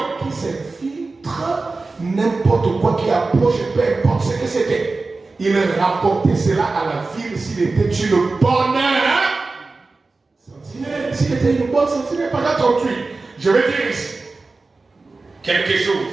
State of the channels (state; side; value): quieter; left; 3.7 dB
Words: qui s'infiltrent, n'importe quoi qui approche, peu importe ce que c'était. Il rapportait cela à la ville s'il était une bonne sentinelle. S'il était une bonne sentinelle, pas attendue. Je vais dire ici quelque